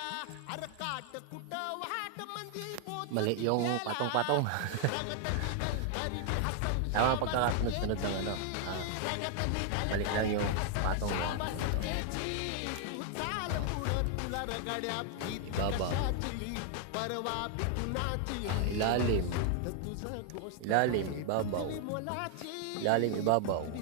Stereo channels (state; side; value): different; both; correlation 0.00